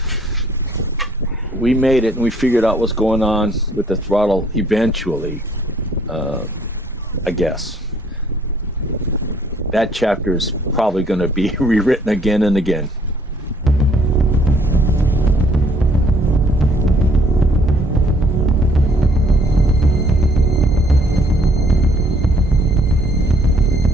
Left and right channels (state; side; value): normal; both; correlation 0.62